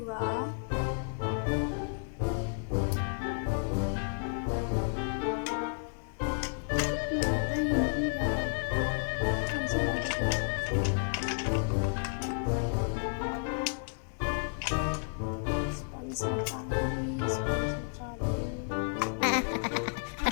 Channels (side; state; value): right; silent; digital silence